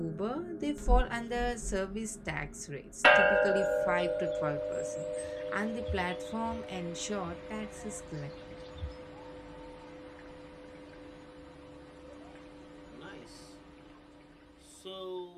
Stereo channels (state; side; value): identical; both; correlation 1.00